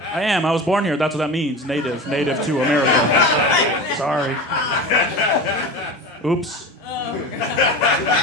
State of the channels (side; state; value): both; normal; correlation 0.29